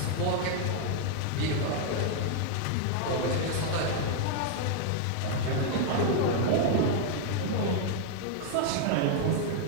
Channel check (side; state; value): both; different; correlation 0.00